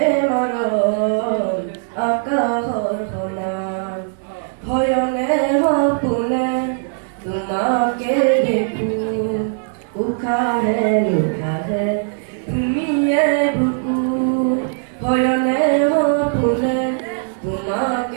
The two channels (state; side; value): silent; left; digital silence